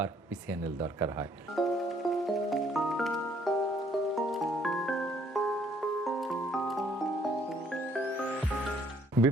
পিসিএনএল দরকার হয়।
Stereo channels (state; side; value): normal; both; correlation 0.64